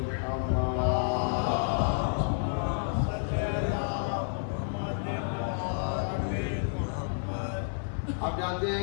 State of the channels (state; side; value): silent; right; digital silence